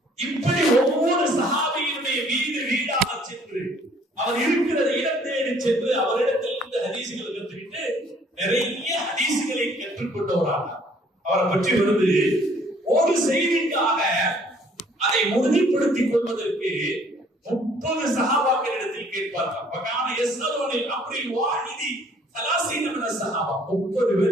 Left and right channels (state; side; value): normal; both; correlation 0.60